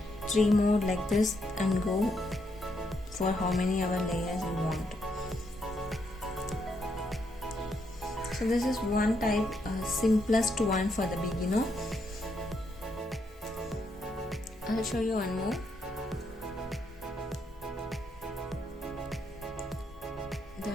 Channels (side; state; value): both; normal; correlation 0.77